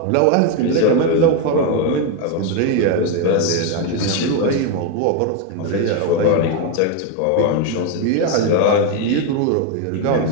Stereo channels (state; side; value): different; both; correlation 0.02